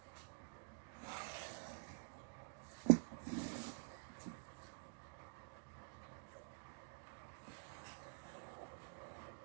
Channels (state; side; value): silent; left; digital silence